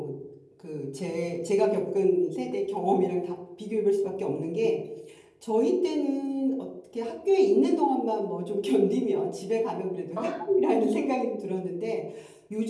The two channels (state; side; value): identical; both; correlation 1.00